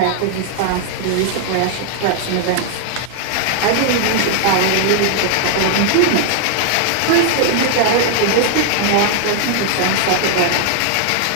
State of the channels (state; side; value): different; both; correlation 0.00